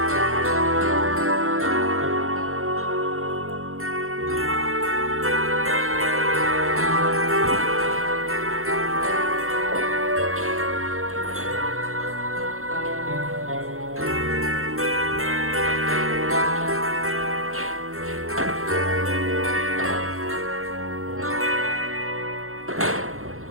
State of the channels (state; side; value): late; left; 0.62 ms